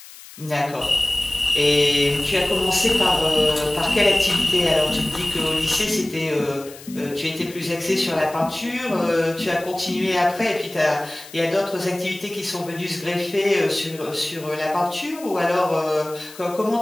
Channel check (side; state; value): left; noise; hiss, 18 dB below the sound